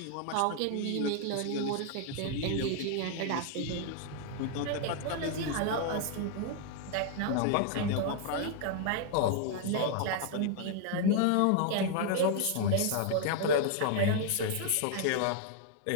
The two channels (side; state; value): both; different; correlation 0.00